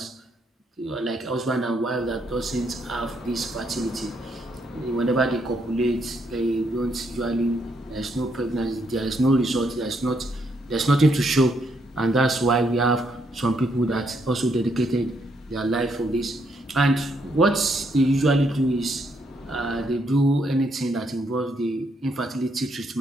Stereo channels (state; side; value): normal; both; correlation 0.74